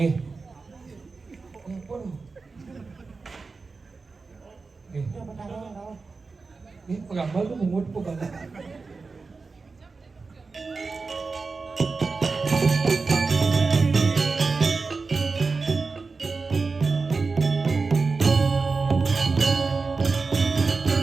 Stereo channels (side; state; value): left; quieter; 4.3 dB